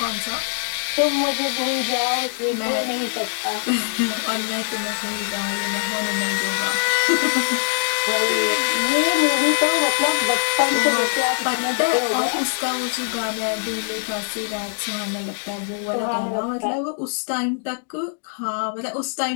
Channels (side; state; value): right; silent; digital silence